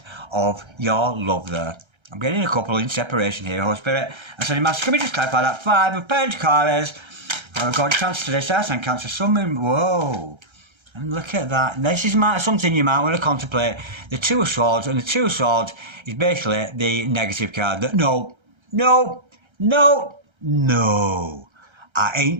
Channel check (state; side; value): late; left; 1.3 ms